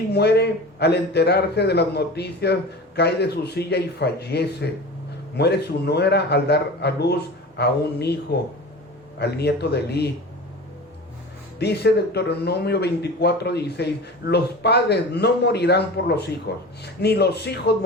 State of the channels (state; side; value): normal; both; correlation 0.34